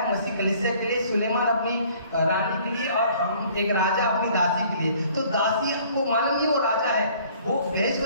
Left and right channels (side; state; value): both; inverted; correlation -0.56